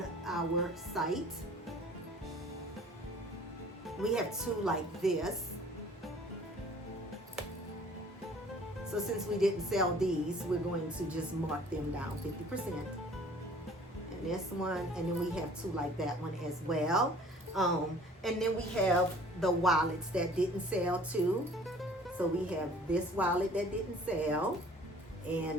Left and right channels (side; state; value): both; normal; correlation 0.52